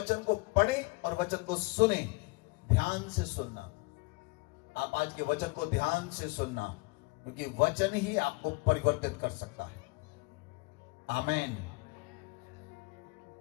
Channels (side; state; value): right; quieter; 28.0 dB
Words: को पढ़े और वचन को सुने, ध्यान से सुनना। आप आज के वचन को ध्यान से सुनना, क्योंकि वचन ही आपको परिवर्तित कर सकता है। आमेन।